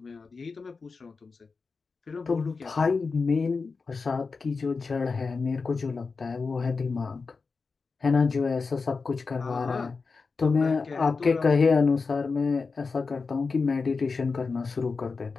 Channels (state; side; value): quieter; right; 4.6 dB